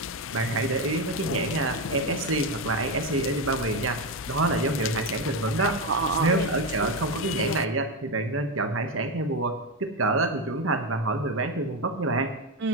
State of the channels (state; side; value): normal; both; correlation 0.12